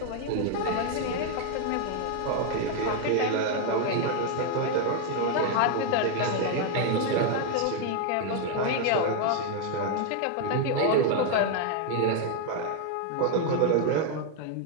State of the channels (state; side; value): different; both; correlation 0.00